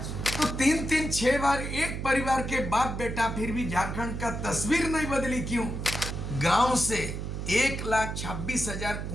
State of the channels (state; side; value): noise; right; hum, 5 dB below the sound